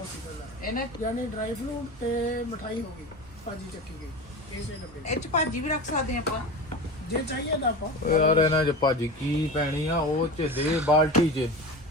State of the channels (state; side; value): normal; both; correlation 0.28